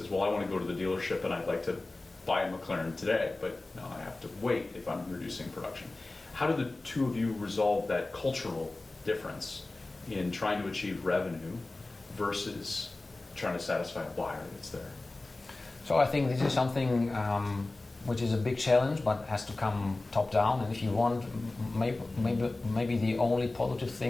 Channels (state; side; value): quieter; right; 3.1 dB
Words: well, I want to go to the dealership and I'd like to buy a McLaren today, but no, I have to wait if I'm reducing production. How do the two of you resolve that cultural difference in trying to achieve revenue versus trying to satisfy a buyer that's there? So I think this is something which is a big challenge, but has to come top down. And if you want, maybe the only positive